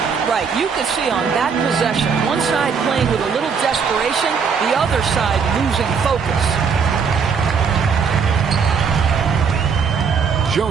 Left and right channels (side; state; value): left; quieter; 6.0 dB